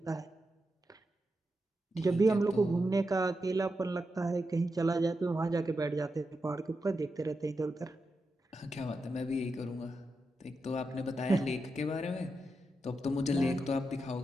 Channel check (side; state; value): both; normal; correlation 0.87